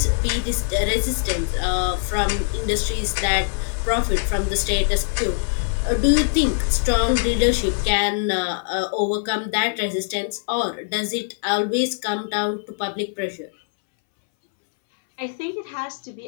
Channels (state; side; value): silent; right; 63 dB below the other